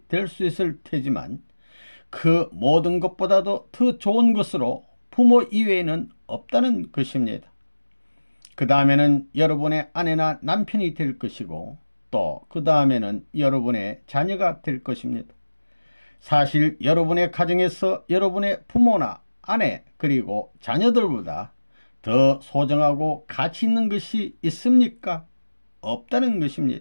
될 수 있을 테지만 그 모든 것보다도 더 좋은 것으로 부모 이외에는 없다는 것입니다. 그 다음에는 여러분의 아내나 남편이 될 것이고 또 그 다음에는 여러분의 자녀가 될 것입니다. 사실 여러분의 가정에서 여러분의 부모나 아내 그리고 자녀들보다 더 소중하고 가치 있는 것이 있습니까? 없다는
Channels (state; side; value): inverted; both; correlation -1.00